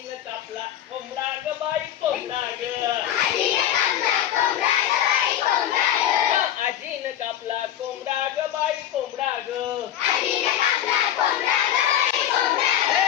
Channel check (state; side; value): quieter; right; 11.3 dB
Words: कापला कोंबडा ग बाई कोंबडा ग. आजीनं कापला कोंबडा ग बाई कोंबडा ग.